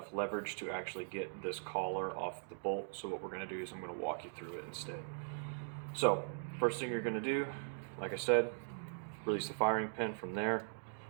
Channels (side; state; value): left; silent; digital silence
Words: leverage to actually get this collar off the bolt, so what we're going to do is I'm going to walk you through it instead. So, first thing you're going to do, like I said, release the firing pin from there.